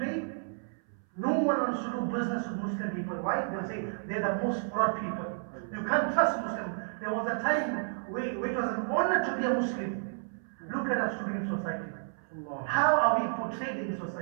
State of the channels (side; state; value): left; silent; 57 dB below the other